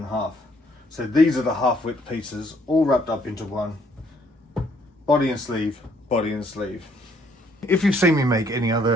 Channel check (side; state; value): both; normal; correlation 0.66